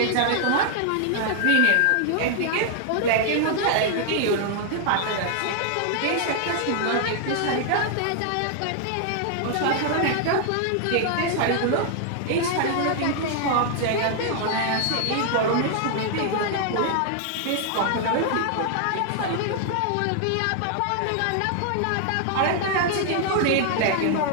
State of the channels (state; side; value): different; both; correlation 0.00